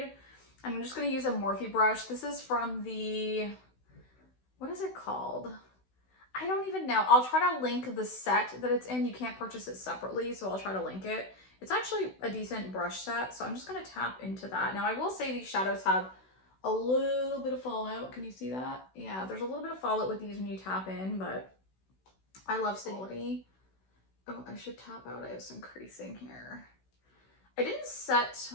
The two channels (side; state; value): right; late; 16 ms